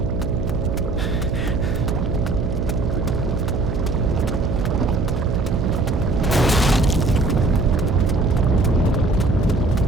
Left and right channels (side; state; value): right; noise; hum, 3 dB below the sound